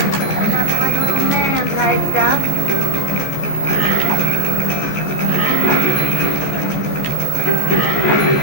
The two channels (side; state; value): right; late; 14 ms